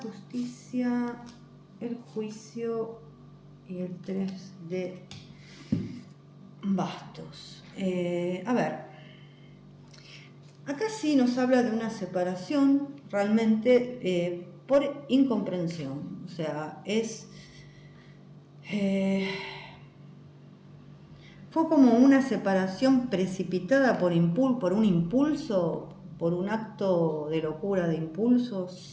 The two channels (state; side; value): identical; both; correlation 1.00